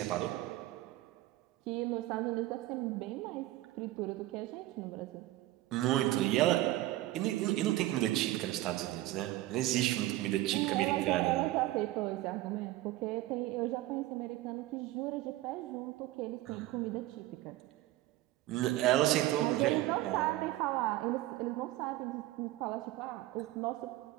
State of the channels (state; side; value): quieter; left; 16.4 dB